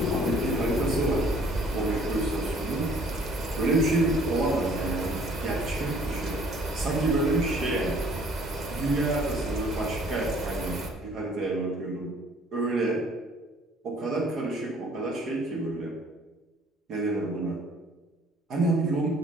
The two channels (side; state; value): both; normal; correlation 0.57